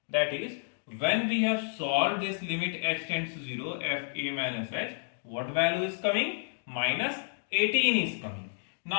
That is, when we have solved this limit h tends to 0, f a minus h, what value is coming? Minus 18 is coming.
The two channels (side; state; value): right; silent; digital silence